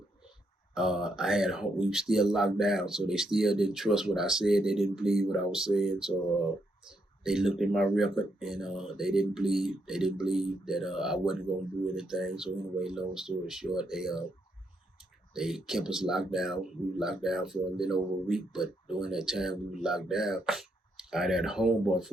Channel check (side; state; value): both; normal; correlation 0.78